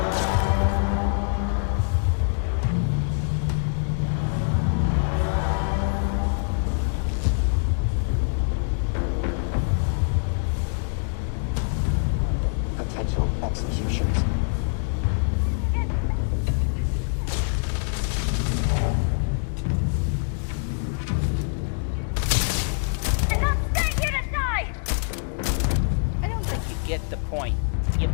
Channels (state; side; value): silent; right; 62 dB below the other